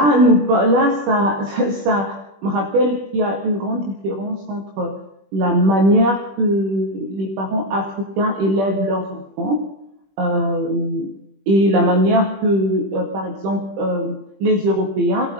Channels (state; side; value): late; left; 21 ms